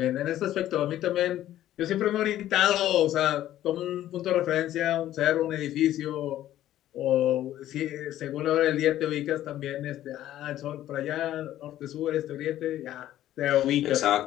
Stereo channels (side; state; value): right; quieter; 13.0 dB